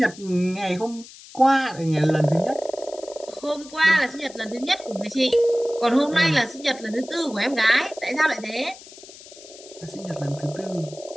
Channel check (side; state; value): left; noise; hiss, 19 dB below the sound